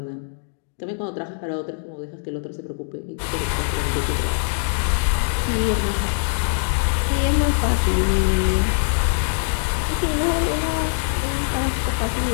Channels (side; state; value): right; silent; digital silence